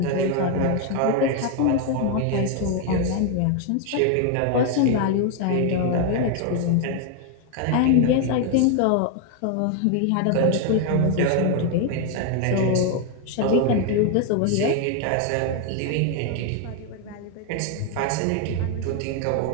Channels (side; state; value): both; different; correlation 0.00